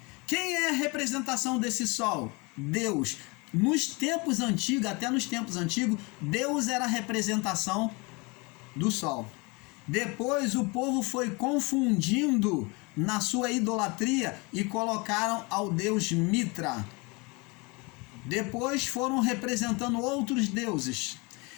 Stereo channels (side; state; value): right; quieter; 27.8 dB